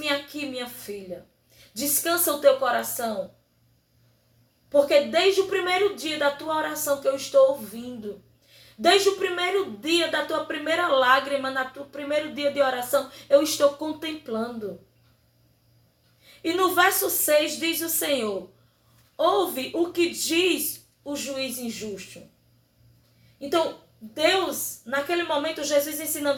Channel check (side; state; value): both; identical; correlation 1.00